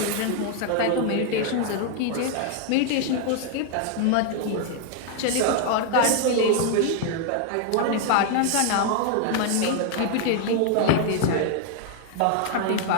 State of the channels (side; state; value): both; different; correlation 0.00